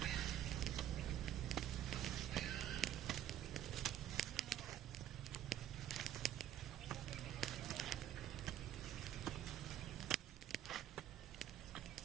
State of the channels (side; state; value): left; quieter; 10.9 dB